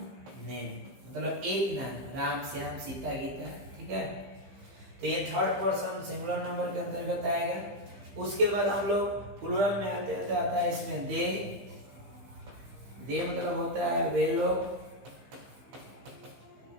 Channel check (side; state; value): left; late; 15 ms